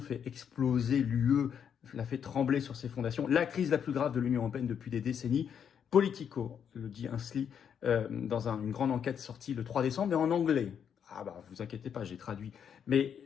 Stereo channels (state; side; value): quieter; right; 8.0 dB